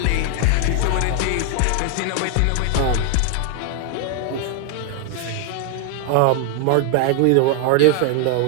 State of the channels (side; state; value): both; different; correlation 0.00